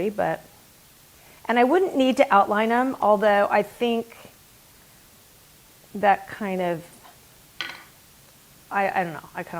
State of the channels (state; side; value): identical; both; correlation 1.00